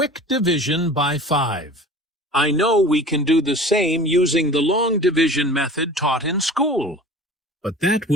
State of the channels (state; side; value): normal; both; correlation 0.41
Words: division by 5. I know we can do the same using the long division method taught in school, but that